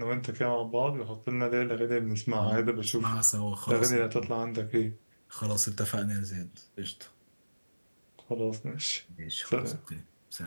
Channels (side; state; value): both; inverted; correlation -1.00